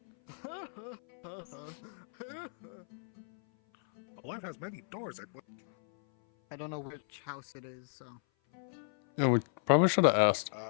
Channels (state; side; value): silent; right; 55 dB below the other